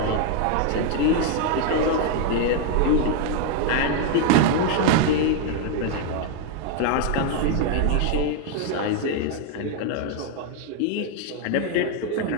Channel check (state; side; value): different; both; correlation 0.01